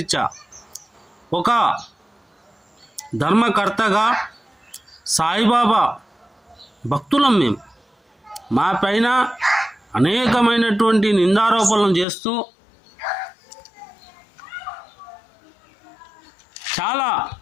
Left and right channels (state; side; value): drops out; right; at 12.1 s